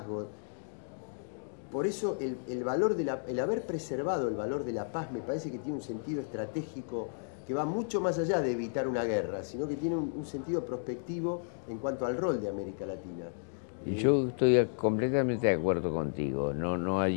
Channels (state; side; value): silent; right; digital silence